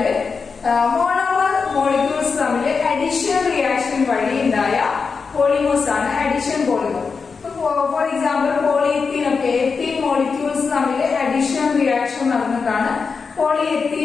മോണോമർ മോളിക്യൂൾസ് തമ്മിൽ അഡിഷൻ റിയാക്ഷൻ വഴി ഉണ്ടായ പോളിമേഴ്സ് ആണ് അഡിഷൻ പോളിമർ. ഫോർ എക്സാമ്പിൾ പോളിയെത്തീൻ ഒക്കെ എത്തീൻ മോളിക്യൂൾസ് തമ്മിൽ അഡിഷൻ റിയാക്ഷൻ നടന്നിട്ടാണ്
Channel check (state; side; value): quieter; right; 5.1 dB